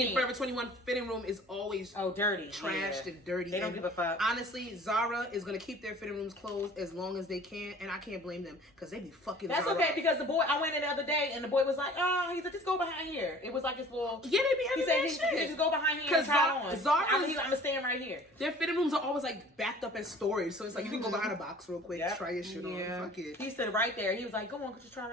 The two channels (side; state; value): both; normal; correlation 0.48